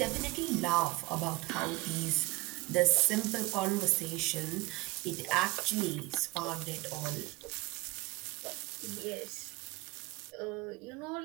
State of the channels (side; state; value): left; quieter; 21.3 dB